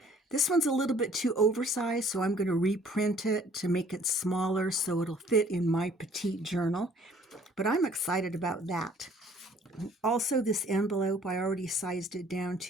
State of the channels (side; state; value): both; normal; correlation 0.56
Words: This one's a little bit too oversized, so I'm going to reprint it to make it smaller so it'll fit in my petite journal. But I'm excited about that. Also, this envelope, I already sized it down